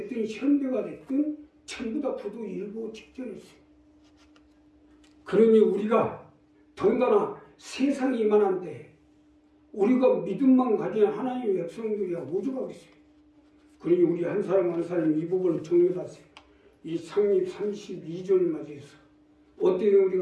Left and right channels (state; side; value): identical; both; correlation 1.00